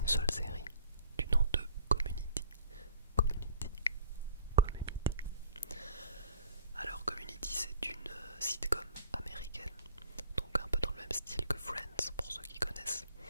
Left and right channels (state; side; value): inverted; both; correlation -0.50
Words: seule série, du nom de Community. Community. Community. Alors Community, c'est une sitcom américaine, donc un peu dans le même style que Friends pour ceux qui connaissent.